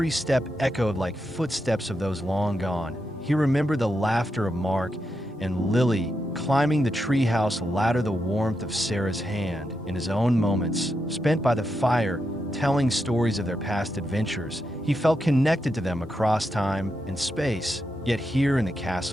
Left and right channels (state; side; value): normal; both; correlation 0.85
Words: step echoed like footsteps of those long gone. He remembered the laughter of Mark and Lily climbing the treehouse ladder, the warmth of Sarah's hand in his own moments spent by the fire, telling stories of their past adventures. He felt connected to them across time and space. Yet here in the